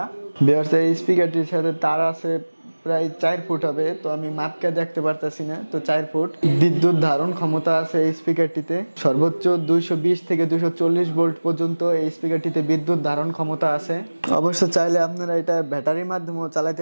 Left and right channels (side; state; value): both; inverted; correlation -1.00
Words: ভিউয়ার্স এই স্পিকারটির সাথে তার আছে প্রায় 4 ফুট হবে। তো আমি মাপকে দেখতে পারতেছি না। তো 4 ফুট বিদ্যুৎ ধারণ ক্ষমতা আছে এই স্পিকারটিতে। সর্বোচ্চ 220 থেকে 240 ভোল্ট পর্যন্ত এই স্পিকারটিতে বিদ্যুৎ ধারণ ক্ষমতা আছে। অবশ্য চাইলে আপনারা এটা ব্যাটারির মাধ্যমেও